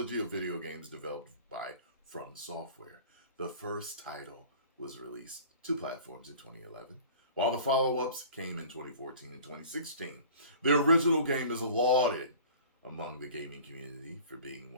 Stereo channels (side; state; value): both; inverted; correlation -0.44